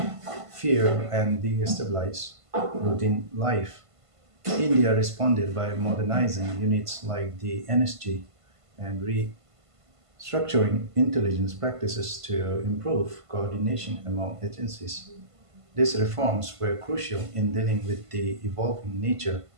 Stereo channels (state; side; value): late; left; 1.5 ms